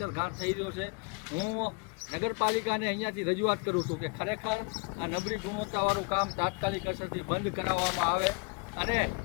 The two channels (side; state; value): right; quieter; 32.9 dB